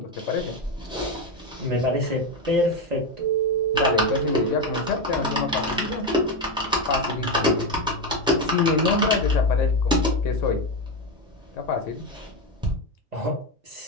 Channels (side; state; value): both; normal; correlation 0.11